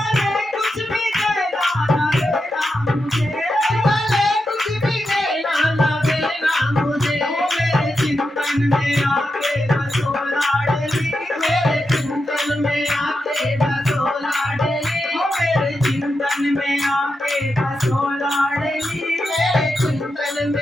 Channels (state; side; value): normal; both; correlation 0.87